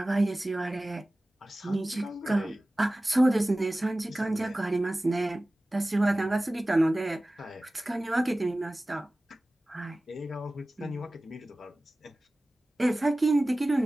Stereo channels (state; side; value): normal; both; correlation 0.97